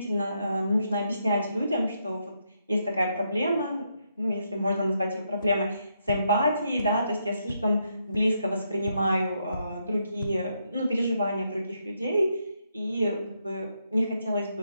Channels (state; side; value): inverted; both; correlation -0.79